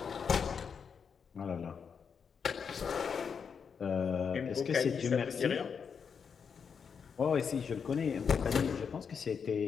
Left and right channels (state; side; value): quieter; right; 6.4 dB